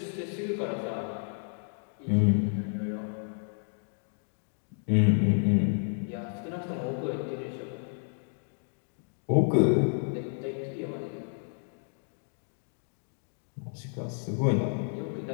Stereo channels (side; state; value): right; silent; 57 dB below the other